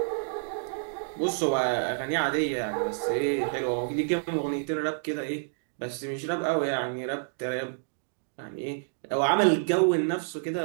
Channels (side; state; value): left; silent; digital silence